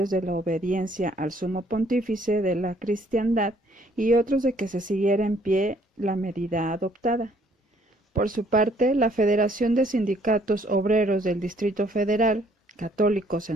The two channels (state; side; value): normal; both; correlation 0.64